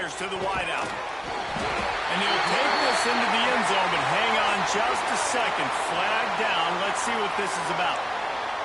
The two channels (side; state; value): both; identical; correlation 1.00